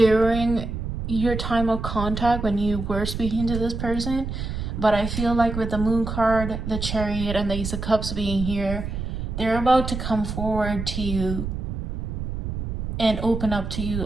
your time of contact when you were speaking to this person. But I feel like with the Moon card, the Chariot, and the Ace of Cups being here, they're about to come forward to you and open up to you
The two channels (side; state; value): right; noise; rumble, 5 dB below the sound